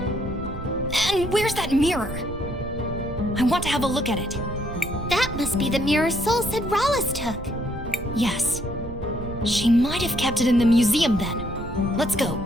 And where's that mirror? I want to have a look at it. That must be the mirror Soul said Rhallus took. Yes. She might have kept it in the museum then. Let's go.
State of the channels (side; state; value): right; noise; rumble, 11 dB below the sound